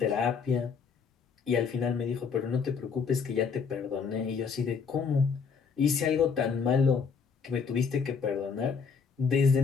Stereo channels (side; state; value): right; quieter; 5.8 dB